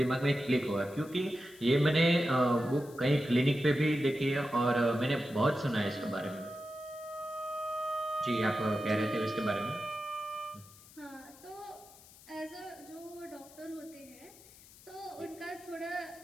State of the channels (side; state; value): left; noise; hiss, 22 dB below the sound